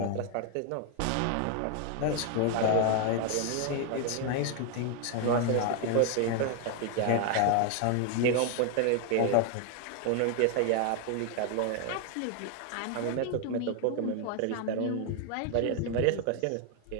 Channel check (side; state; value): both; different; correlation 0.00